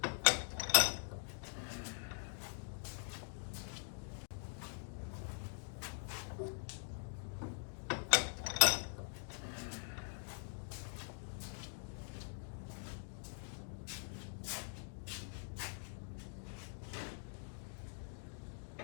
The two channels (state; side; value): silent; right; digital silence